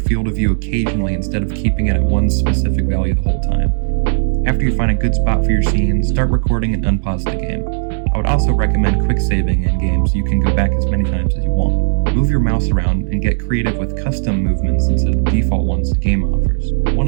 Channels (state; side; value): silent; left; digital silence